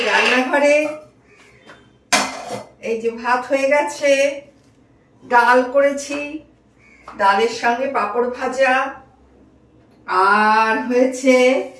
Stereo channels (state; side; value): identical; both; correlation 1.00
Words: রান্নাঘরে এই যে ভাত হয়ে গেছে, ডাল করেছি, ডালের সঙ্গে পাঁপড় ভাজা, আর হয়েছে